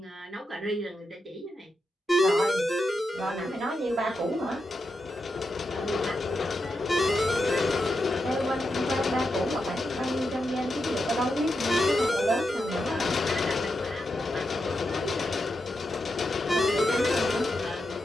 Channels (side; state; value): both; normal; correlation 0.86